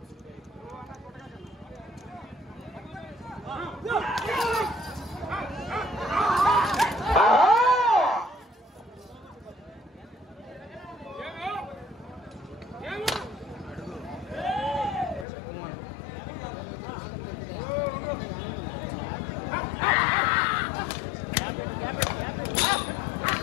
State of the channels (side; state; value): right; drops out; at 15.2 s